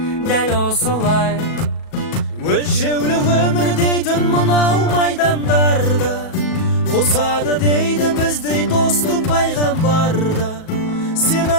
дәл осылай. Өлшеулі өмір дейтін мынау майдандарда, қосады дейді біздей досты пайғамбарда. Сен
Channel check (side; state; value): right; late; 37 ms